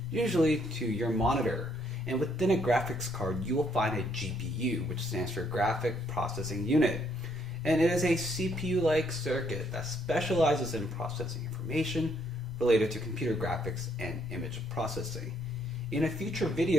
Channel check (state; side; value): normal; both; correlation 0.70